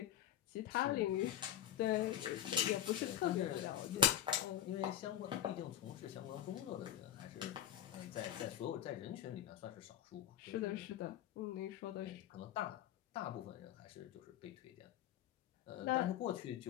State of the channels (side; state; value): right; quieter; 11.2 dB